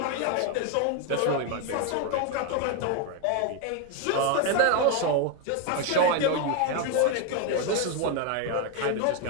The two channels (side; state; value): both; different; correlation 0.01